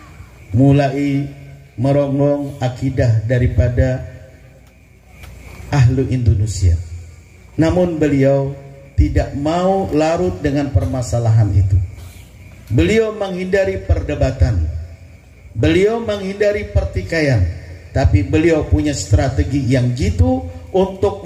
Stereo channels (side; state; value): both; identical; correlation 1.00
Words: mulai merongrong akidah daripada ahlu Indonesia. Namun beliau tidak mau larut dengan permasalahan itu. Beliau menghindari perdebatan, beliau menghindari pertikaian, tapi beliau punya strategi yang jitu